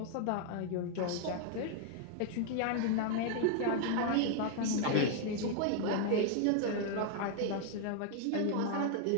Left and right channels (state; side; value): different; both; correlation 0.00